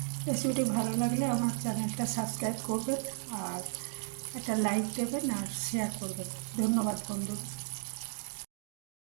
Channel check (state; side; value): silent; left; digital silence